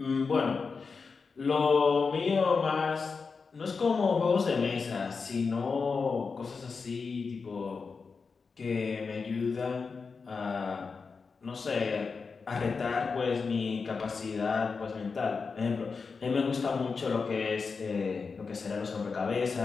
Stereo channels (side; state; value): right; quieter; 4.9 dB